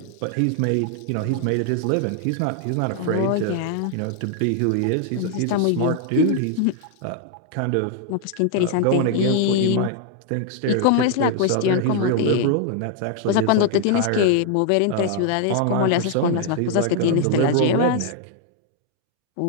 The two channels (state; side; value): different; both; correlation 0.00